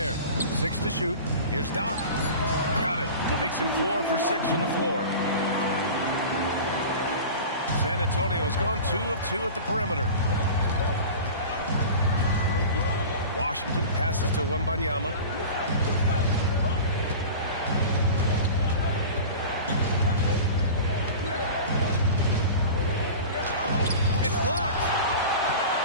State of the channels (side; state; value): both; inverted; correlation -0.35